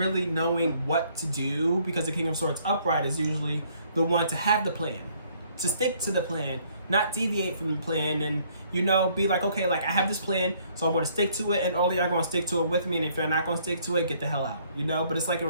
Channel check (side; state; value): both; inverted; correlation -0.64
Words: knowing what to do, because the King of Swords upright is usually the one to have the plan, to stick to the plan, not deviate from the plan, and you know, be like, okay, like I have this plan, so I'm going to stick to it, and all of y'all going to stick to it with me, and if you're not going to stick to it, get the hell out, you know. But it's like in